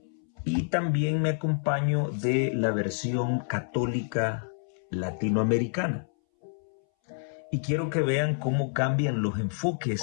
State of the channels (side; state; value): right; silent; 59 dB below the other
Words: y también me acompaño de la versión católica latinoamericana. Y quiero que vean cómo cambian los